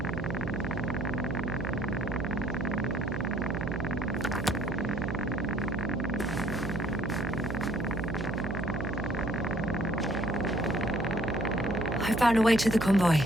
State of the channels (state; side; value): noise; right; hum, 4 dB below the sound